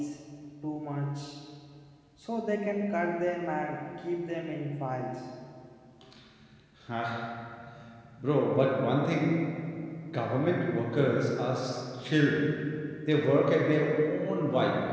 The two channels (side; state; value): both; identical; correlation 1.00